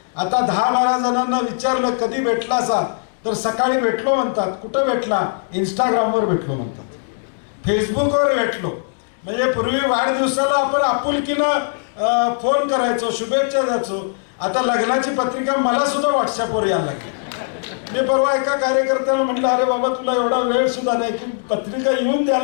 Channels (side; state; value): right; silent; digital silence